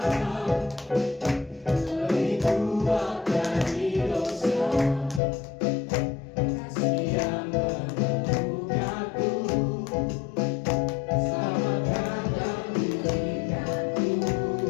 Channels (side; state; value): right; drops out; at 5.2 s